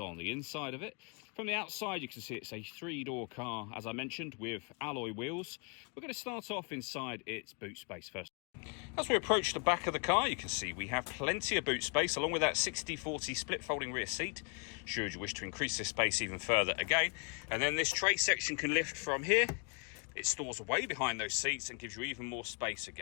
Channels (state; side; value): quieter; right; 38.6 dB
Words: the inside of it. From the outside you can see it's a 3-door car, as I mentioned, with alloy wheels. We're going to start off inside its boot space first. As we approach the back of the car, you can see we have plenty of boot space, along with that 60/40 split folding rear seat, should you wish to increase this space even further again. And then this tray section can lift from here. It stores away behind those seats and gives you even more space